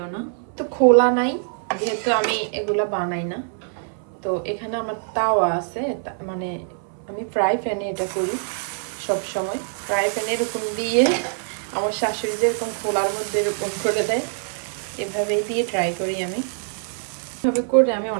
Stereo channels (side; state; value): left; silent; 59 dB below the other